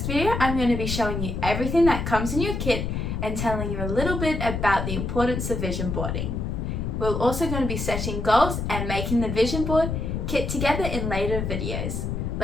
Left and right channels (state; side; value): noise; left; rumble, 2 dB below the sound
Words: video, I'm going to be showing you everything that comes in your kit and telling you a little bit about the importance of vision boarding. We're also going to be setting goals and making the vision board kit together in later videos.